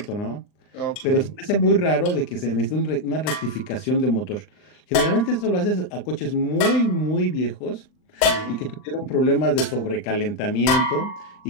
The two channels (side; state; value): right; late; 39 ms